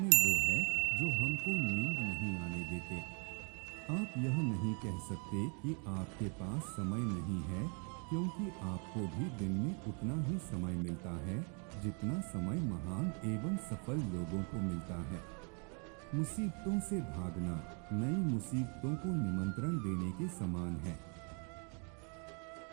वो है जो हमको नींद नहीं आने देते। आप यह नहीं कह सकते कि आपके पास समय नहीं है, क्योंकि आपको भी दिन में उतना ही समय मिलता है जितना समय महान एवं सफल लोगों को मिलता है। मुसीबतों से भागना नई मुसीबतों को निमंत्रण देने के समान है।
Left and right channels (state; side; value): quieter; left; 37.7 dB